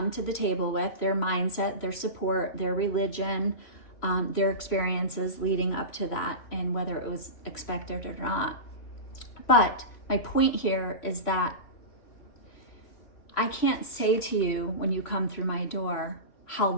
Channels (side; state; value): right; late; 3.1 ms